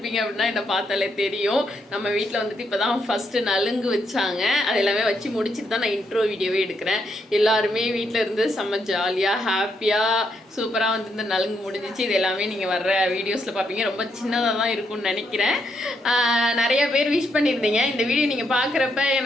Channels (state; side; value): normal; both; correlation 0.78